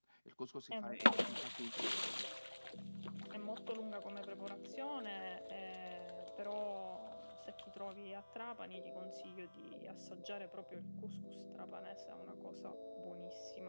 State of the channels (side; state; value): both; inverted; correlation -1.00